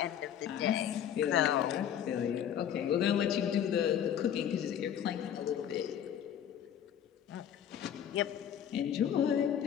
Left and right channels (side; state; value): right; quieter; 9.6 dB